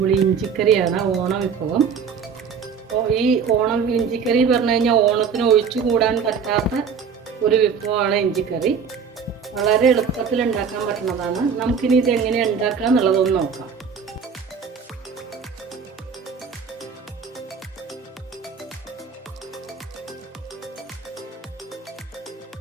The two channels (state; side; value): quieter; left; 6.4 dB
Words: ഇഞ്ചിക്കറിയാണ്, ഓണം വിഭവം. അപ്പോൾ ഈ ഓണം ഇഞ്ചിക്കറി പറഞ്ഞു കഴിഞ്ഞാൽ ഓണത്തിന് ഒഴിച്ചു കൂടാൻ പറ്റാത്ത ഒരു വിഭവമാണ് ഇഞ്ചിക്കറി. വളരെ എളുപ്പത്തിൽ ഉണ്ടാക്കാൻ പറ്റുന്നതാണ്. നമുക്കിനി ഇതെങ്ങനെ ഉണ്ടാക്കുക എന്നുള്ളതൊന്ന് നോക്കാം.